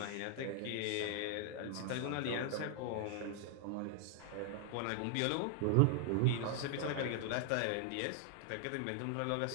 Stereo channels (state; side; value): different; both; correlation 0.00